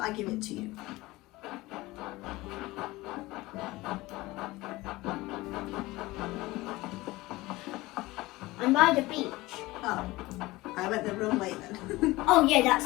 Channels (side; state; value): right; quieter; 19.8 dB